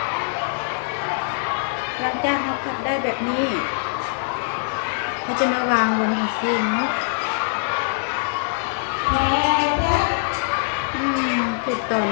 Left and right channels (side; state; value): right; silent; digital silence